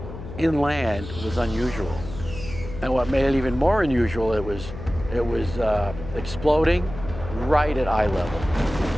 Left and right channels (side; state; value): left; noise; hum, 11 dB below the sound